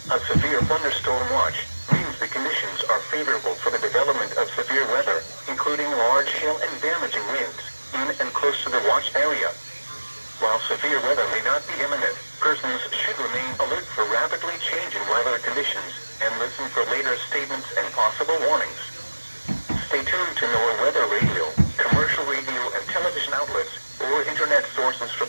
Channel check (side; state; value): both; inverted; correlation -1.00